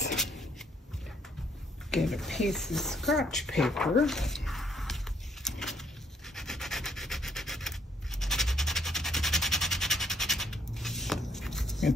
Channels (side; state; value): both; normal; correlation 0.68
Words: get a piece of scratch paper. You can